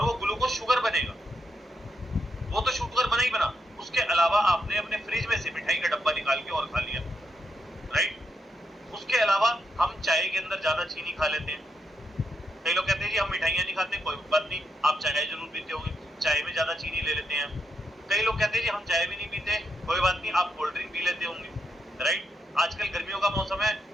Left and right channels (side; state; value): both; normal; correlation 0.82